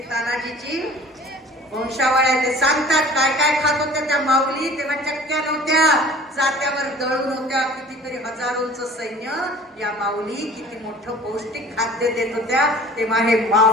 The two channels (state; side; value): normal; both; correlation 0.46